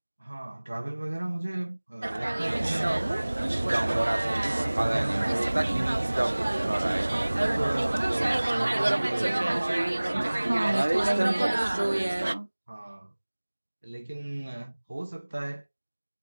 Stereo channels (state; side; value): inverted; both; correlation -1.00